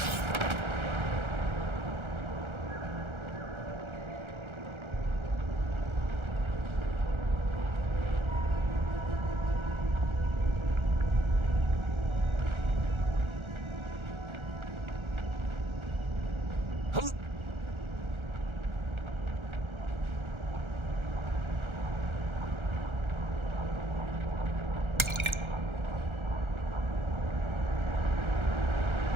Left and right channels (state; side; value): late; left; 1.4 ms